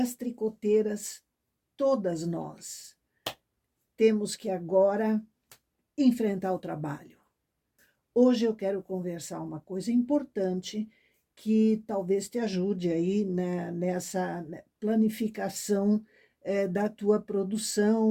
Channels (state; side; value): identical; both; correlation 1.00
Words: tricoteiras, todas nós, temos que agora enfrentar o trabalho. Hoje eu quero conversar uma coisa importante que talvez te ajude aí, né, nessa planificação da tua